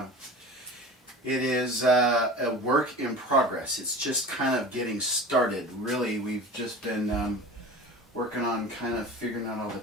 It is a work in progress. It's just kind of getting started. Really, we've just been working on kind of figuring out all the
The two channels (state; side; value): normal; both; correlation 0.35